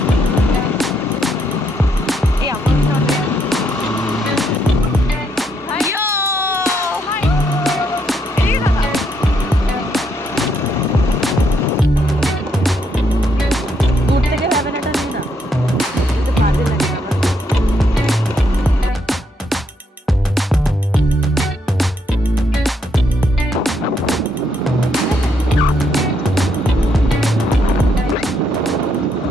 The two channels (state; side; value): normal; both; correlation 0.75